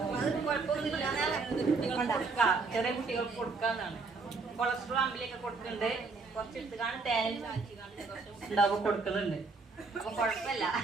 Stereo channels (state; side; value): quieter; left; 4.2 dB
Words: ചെറിയ കുട്ടികൾക്ക് കൊടുക്കാന്നാണ്. കൊളസ്ട്രോൾ അമ്പിലൊക്കെ കൊടുക്കുന്നുണ്ട്. കുറച്ച് എടുത്ത് കാണും തേനിൽ ചാച്ചി കാണും ഉണ്ടാവും കൊടുക്കുന്നുണ്ട്. അപ്പൊ കുഴപ്പമില്ല.